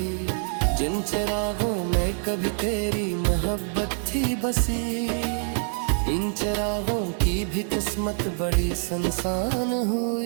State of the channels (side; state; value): left; silent; 61 dB below the other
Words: जिन चिरागों में कभी तेरी मोहब्बत थी बसी, इन चिरागों की भी किस्मत बड़ी सुनसान